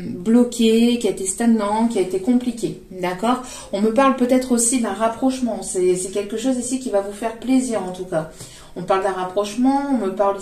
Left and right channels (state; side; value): identical; both; correlation 1.00